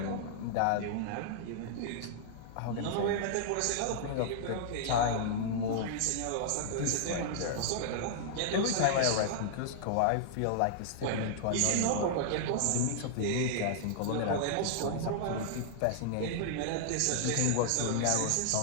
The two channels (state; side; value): different; both; correlation -0.01